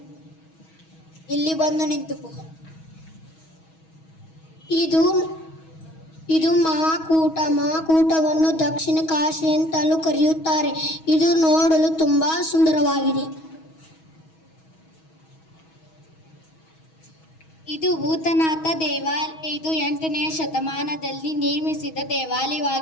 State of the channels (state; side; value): late; right; 6.2 ms